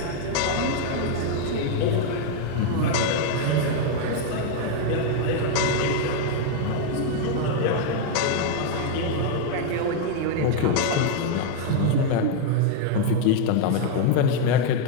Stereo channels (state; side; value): different; both; correlation 0.00